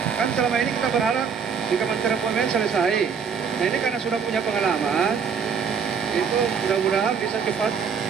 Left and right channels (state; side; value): quieter; left; 6.4 dB